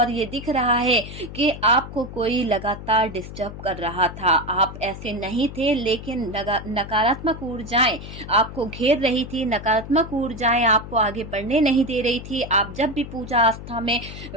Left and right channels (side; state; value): left; noise; hum, 11 dB below the sound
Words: ये दिख रहा है कि आपको कोई लगातार डिस्टर्ब कर रहा था। आप ऐसे नहीं थे, लेकिन नकारात्मक ऊर्जाएं आपको घेर रही थी, नकारात्मक ऊर्जाएं आपको आगे बढ़ने नहीं दे रही थी। आप जब भी पूजा आस्था में